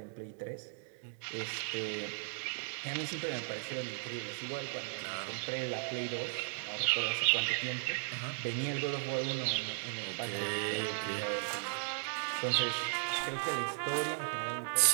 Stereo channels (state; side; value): silent; left; digital silence